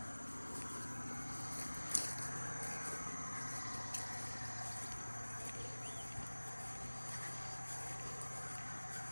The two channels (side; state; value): both; inverted; correlation -1.00